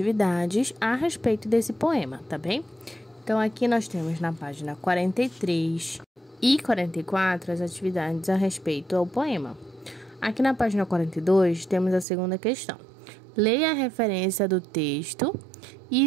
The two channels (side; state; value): left; drops out; at 12.1 s